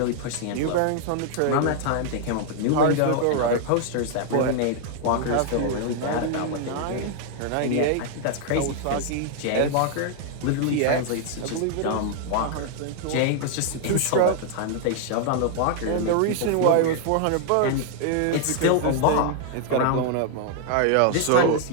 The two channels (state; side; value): different; both; correlation 0.00